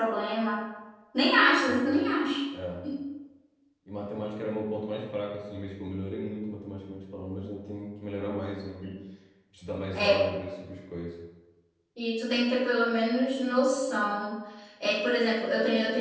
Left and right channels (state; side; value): identical; both; correlation 1.00